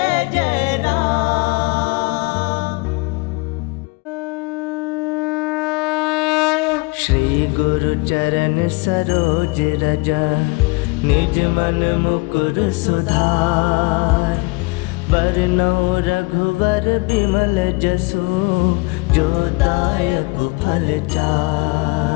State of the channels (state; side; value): quieter; right; 26.4 dB